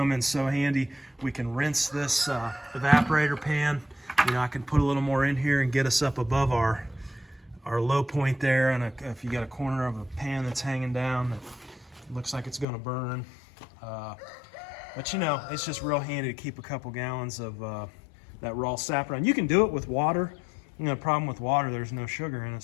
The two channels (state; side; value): drops out; right; at 12.7 s